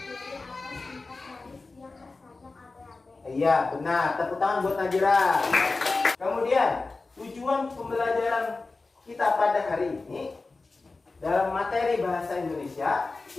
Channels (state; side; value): quieter; right; 3.7 dB